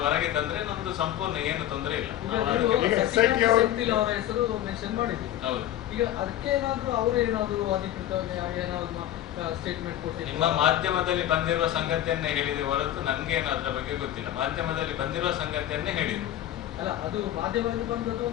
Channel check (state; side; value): quieter; right; 12.5 dB